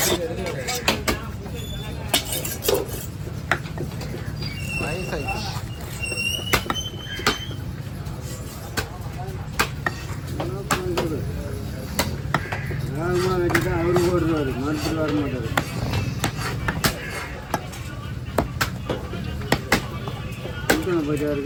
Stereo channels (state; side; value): identical; both; correlation 1.00